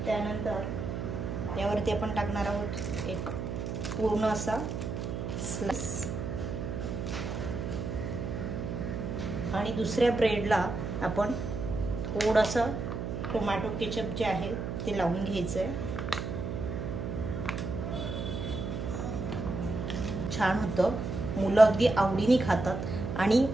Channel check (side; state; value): right; noise; hum, 4 dB below the sound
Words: त्यानंतर यावरती आपण टाकणार आहोत एक पूर्ण असा स्लाइस आणि दुसऱ्या ब्रेडला आपण थोडंसं टोमॅटो केचप जे आहे ते लावून घ्यायचंय। छान होतं, मुलं अगदी आवडीने खातात आणि